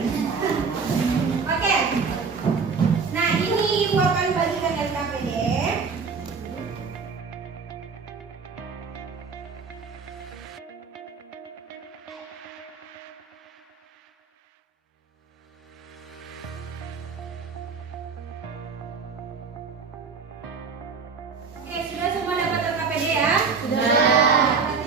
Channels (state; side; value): quieter; left; 5.2 dB